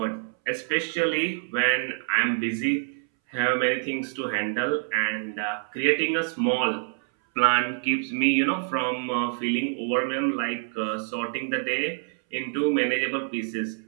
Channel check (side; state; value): left; silent; 61 dB below the other